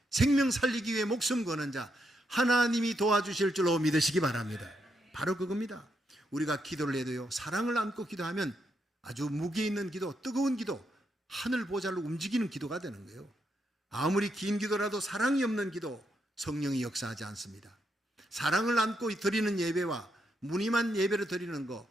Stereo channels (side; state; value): both; normal; correlation 0.80